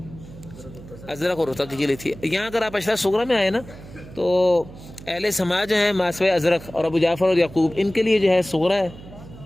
ازرق اور رتق کے لیے تھی۔ یہاں اگر آپ اشرح صغرا میں آئے نا تو اہل سماع جو ہیں ماسوی ازرق اور ابو جعفر اور یعقوب، ان کے لیے جو ہے صغرا ہے۔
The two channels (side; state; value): right; noise; hum, 17 dB below the sound